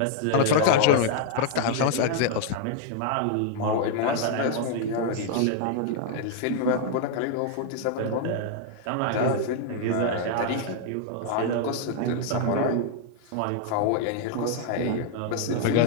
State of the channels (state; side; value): different; both; correlation 0.00